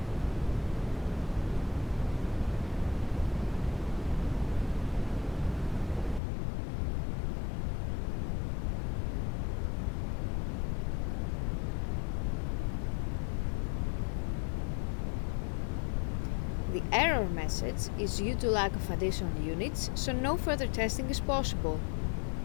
The error message is due to lack of additional units, so no further testing is possible.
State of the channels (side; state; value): right; drops out; at 6.2 s